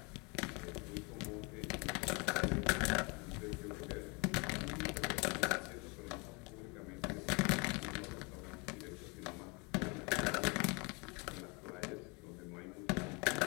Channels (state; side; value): quieter; right; 30.1 dB